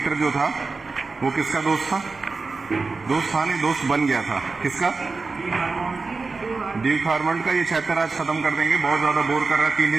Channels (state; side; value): quieter; left; 4.1 dB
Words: जो था वो किसका दोस्त था? दोस्त था नहीं, दोस्त बन गया था। किसका? ड्यूक हार्मंड का। ये चैप्टर आज खत्म कर देंगे, बहुत ज्यादा बोर कर रहा है 3